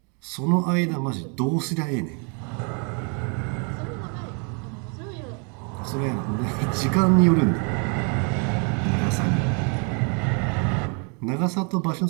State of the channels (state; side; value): quieter; left; 37.1 dB